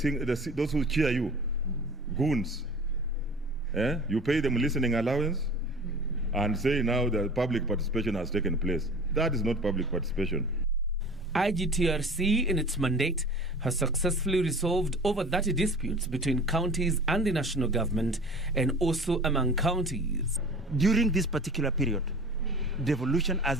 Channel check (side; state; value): both; normal; correlation 0.41